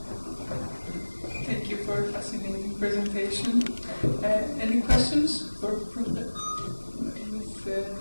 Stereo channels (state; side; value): inverted; both; correlation -1.00